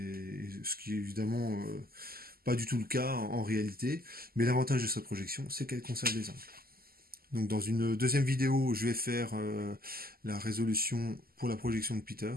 ce qui est évidemment pas du tout le cas en réalité, mais l'avantage de cette projection c'est qu'elle conserve les angles. Donc dans une deuxième vidéo je vais faire la résolution pour la projection de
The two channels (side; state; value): left; late; 0.43 ms